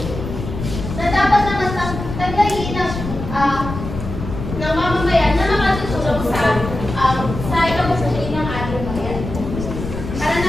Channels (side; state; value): left; noise; rumble, 7 dB below the sound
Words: na dapat naman taglayin ng mamamayan na makatutulong sa ikabubuti ng ating bayan. Para